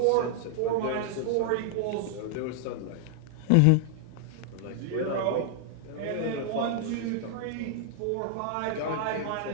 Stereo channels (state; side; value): different; both; correlation 0.00